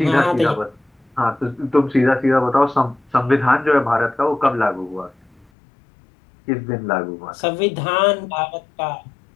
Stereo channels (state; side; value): drops out; right; at 5.5 s